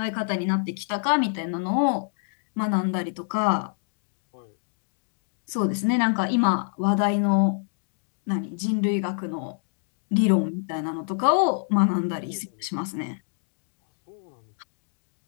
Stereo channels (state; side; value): silent; right; digital silence